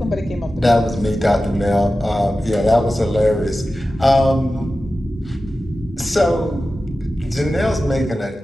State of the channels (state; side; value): normal; both; correlation 0.94